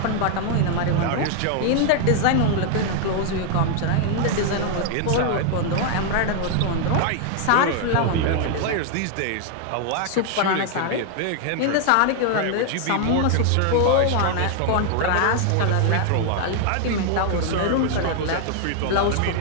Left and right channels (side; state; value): both; different; correlation 0.00